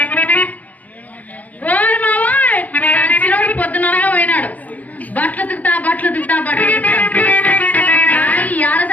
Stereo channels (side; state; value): right; late; 0.077 ms